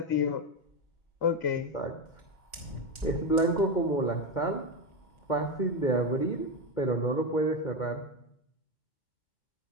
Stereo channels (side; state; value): right; late; 2.1 ms